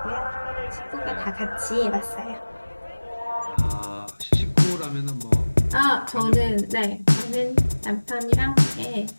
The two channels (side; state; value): both; inverted; correlation -1.00